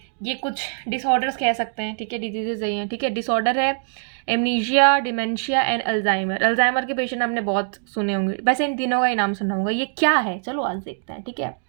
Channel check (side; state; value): left; silent; digital silence